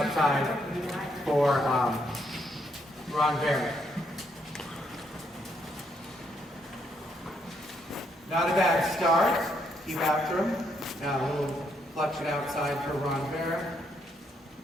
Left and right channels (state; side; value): normal; both; correlation 0.75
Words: for renvers. Not a bad start. Keep after him. Now a little flexion outside for renvers.